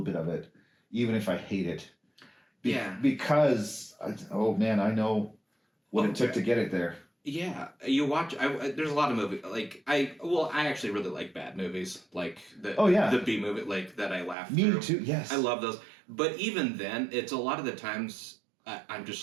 bit of it, even if I hate it. Because I know what it took to get it there. Yeah, you watch. There's a lot of movies I actually really like bad movies, like the B movie, like that I laugh through. Me too. Yes, I love those. But even then, it's a lot of the times I'm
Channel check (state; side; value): drops out; left; at 14.4 s